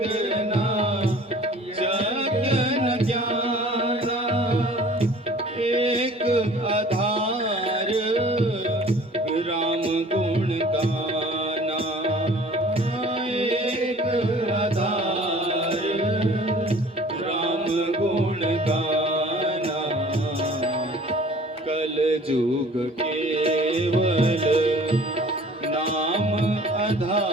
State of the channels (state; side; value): normal; both; correlation 0.49